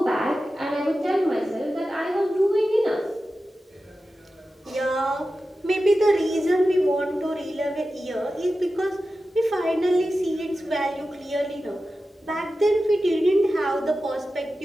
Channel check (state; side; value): normal; both; correlation 0.93